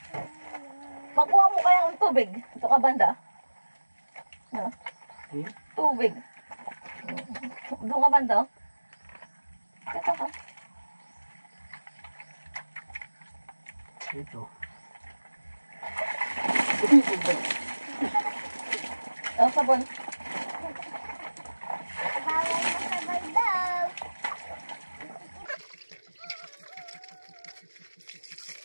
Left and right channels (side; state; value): both; inverted; correlation -1.00